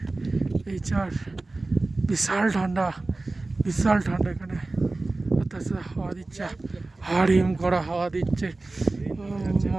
এই চার বিশাল ঠান্ডা, বিশাল ঠান্ডা এখানে। তাছাড়া হাওয়া দিচ্ছে, হাড়িম করা হাওয়া দিচ্ছে। ও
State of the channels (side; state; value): left; quieter; 3.2 dB